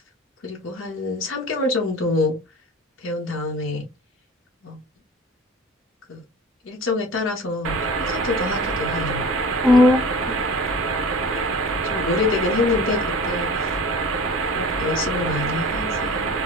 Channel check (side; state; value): both; normal; correlation 0.39